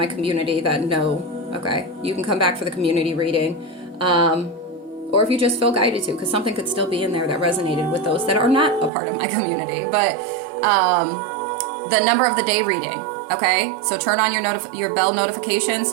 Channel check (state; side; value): drops out; left; at 8.9 s